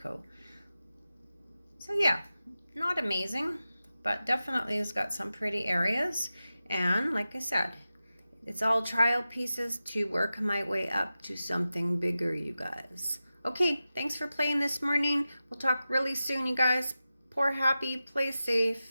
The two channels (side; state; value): both; inverted; correlation -0.94